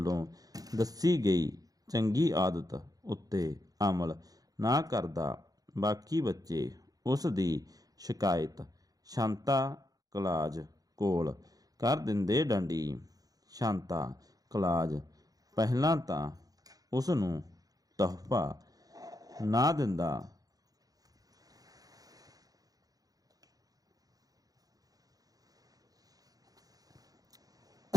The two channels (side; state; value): left; late; 0.18 ms